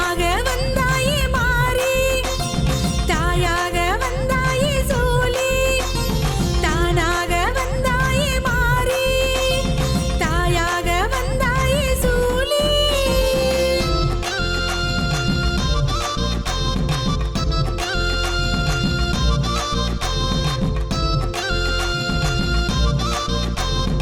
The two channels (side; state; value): both; identical; correlation 1.00